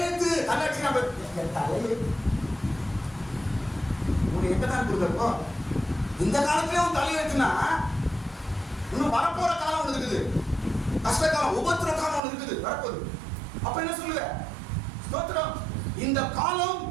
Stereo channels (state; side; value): drops out; left; at 12.2 s